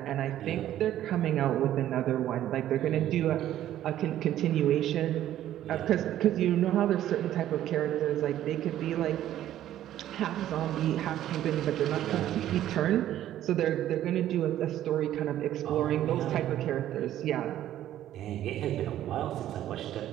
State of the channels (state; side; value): quieter; left; 12.4 dB